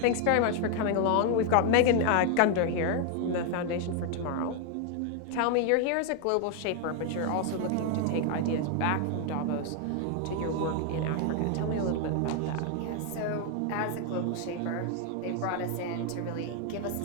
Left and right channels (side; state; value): both; different; correlation 0.00